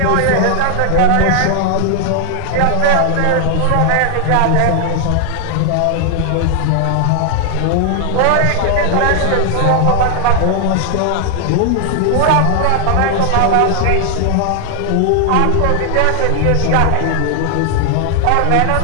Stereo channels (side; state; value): both; different; correlation 0.00